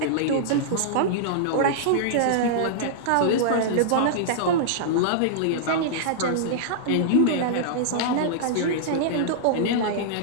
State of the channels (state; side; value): different; both; correlation -0.02